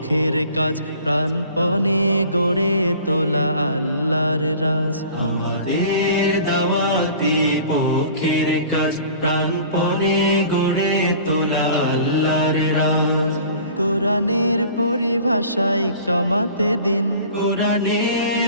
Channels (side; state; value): both; inverted; correlation -0.46